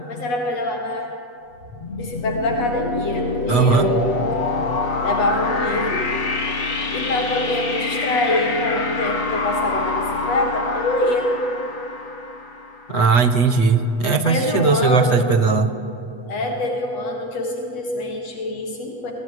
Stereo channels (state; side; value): late; right; 8.2 ms